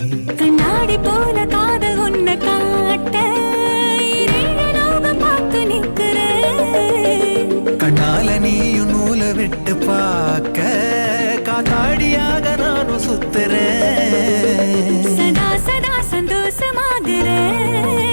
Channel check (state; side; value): inverted; both; correlation -1.00